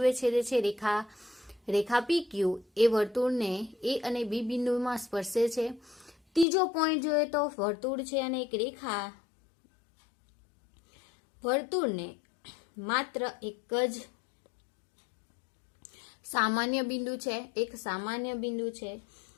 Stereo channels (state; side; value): drops out; right; at 6.5 s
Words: છેદે છે રેખા PQ એ વર્તુળને A અને B બિંદુમાં સ્પર્શે છે. ત્રીજો પોઈન્ટ જોઈએ તો વર્તુળ છે અને એક રેખા વર્તુળને માત્ર એક જ સામાન્ય બિંદુ છે, એક સામાન્ય બિંદુ છે